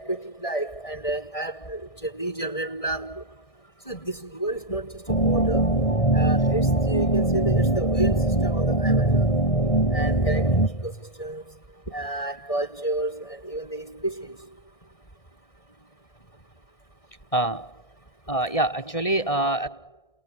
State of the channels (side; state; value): right; late; 1.6 ms